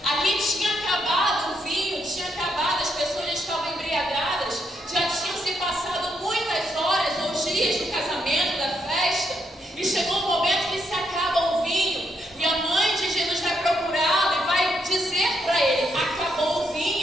Aqui tinha acabado o vinho, tinha acabado, as pessoas já estavam embriagadas, já tinham se passado muitas horas ou dias do casamento, da festa, e chegou um momento que se acaba o vinho, e a mãe de Jesus vai procurá-lo e vai dizer para ele: acabou o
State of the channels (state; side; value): normal; both; correlation 0.77